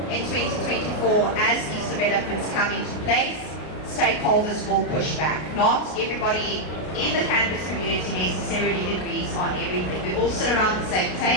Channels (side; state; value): right; late; 33 ms